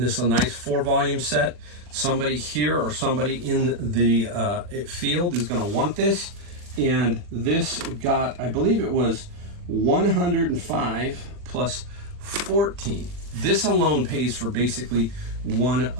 this is a nice 4-volume set. Somebody here or somebody in the field is going to want this. And this got, I believe it was 105 plus 14. This alone pays for basically one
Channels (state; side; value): late; left; 40 ms